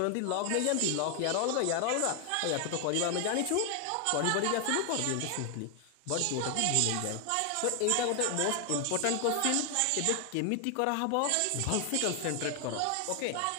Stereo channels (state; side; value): different; both; correlation 0.00